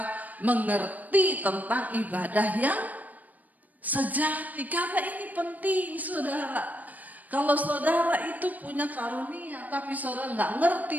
mengerti tentang ibadah yang sejati. Karena ini penting saudara. Kalau saudara itu punya karunia tapi saudara nggak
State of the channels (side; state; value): left; late; 0.079 ms